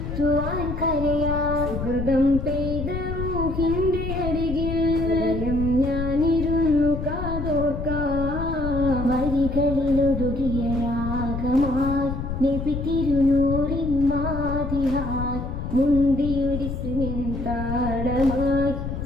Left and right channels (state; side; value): noise; left; rumble, 5 dB below the sound